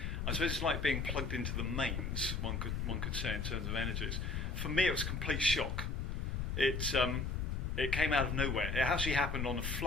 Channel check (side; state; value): left; noise; rumble, 1 dB below the sound